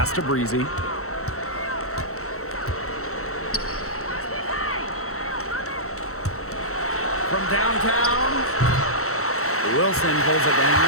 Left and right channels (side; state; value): right; late; 0.64 ms